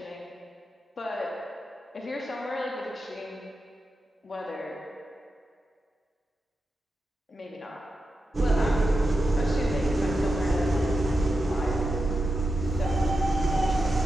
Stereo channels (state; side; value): normal; both; correlation 0.89